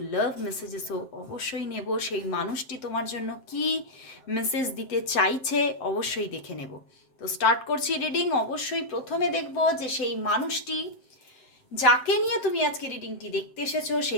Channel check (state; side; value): late; right; 7.7 ms